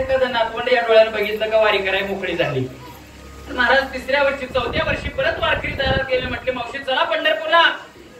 नातवंड या डोळ्यानं बघितलं का वारी करायला मोकळी झाली. महाराज तिसऱ्या वर्षी चौथ्या वर्षी परत वारकरी दारात गेले, म्हटले मावशी चला पंढरपूरला.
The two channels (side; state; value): both; identical; correlation 1.00